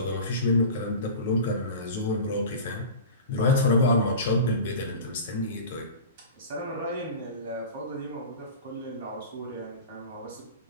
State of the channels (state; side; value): inverted; both; correlation -0.34